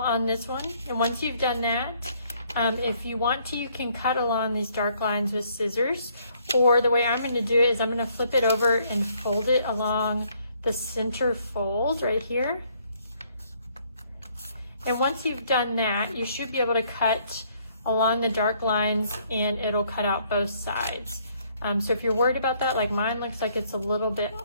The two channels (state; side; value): inverted; both; correlation -0.66